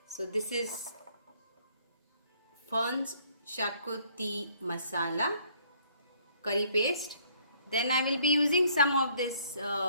So this is Funds Shakuti Masala curry paste. Then I will be using some of this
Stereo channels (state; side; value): inverted; both; correlation -0.63